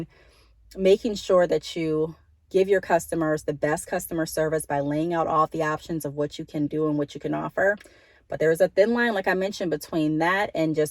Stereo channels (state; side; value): identical; both; correlation 1.00